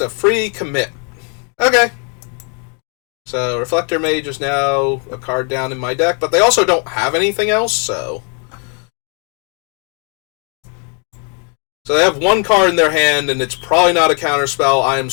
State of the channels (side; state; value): right; quieter; 38.7 dB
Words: a free commit. Okay. So, Reflector Mage is now a card down in my deck, but they also don't have anything else, so... So they have 1 card in their hand, and it's probably not a counterspell. I am